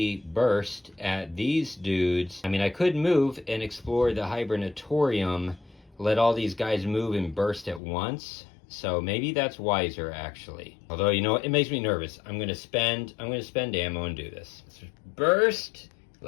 burst at these dudes. I mean, I could move and explore the hibernatorium, let all these guys move and burst at once. So maybe that's wiser, actually. Although, you know what? It makes me nervous. I'm going to spend ammo and do this. Let's burst.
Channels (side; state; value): right; drops out; at 7.8 s